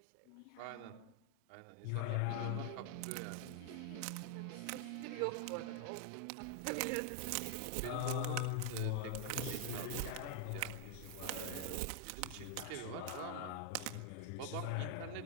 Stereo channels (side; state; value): both; different; correlation 0.00